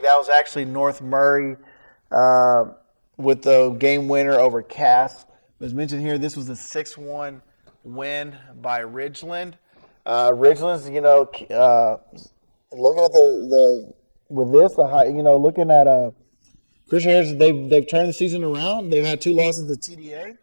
That was actually North Murray with the game winner over Cass. As mentioned here, this was a 6-1 win by Ridgeland. Ridgeland's, looking at looking at Christian Heritage, they've turned the season around. They've had 2 losses to TDA.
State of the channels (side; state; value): both; inverted; correlation -1.00